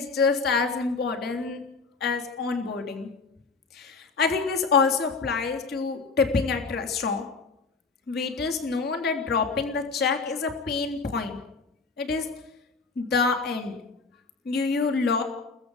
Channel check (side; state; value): right; quieter; 4.4 dB